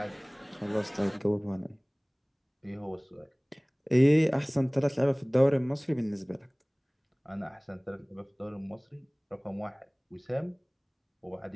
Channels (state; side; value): identical; both; correlation 1.00